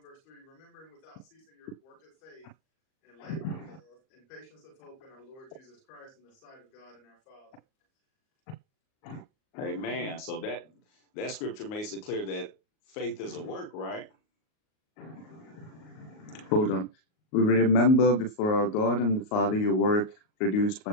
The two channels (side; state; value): right; late; 38 ms